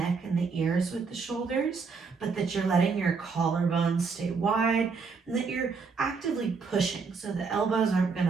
and the ears with the shoulders, but that you're letting your collarbones stay wide and that you're actively pushing so the elbows aren't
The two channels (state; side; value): quieter; left; 4.9 dB